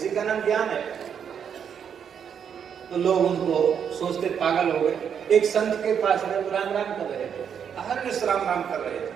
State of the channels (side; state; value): left; quieter; 7.8 dB